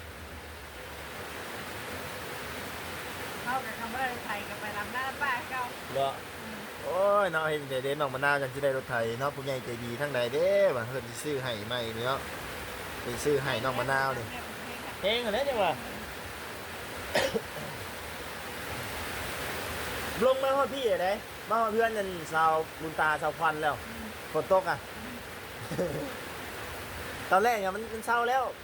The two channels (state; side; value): identical; both; correlation 1.00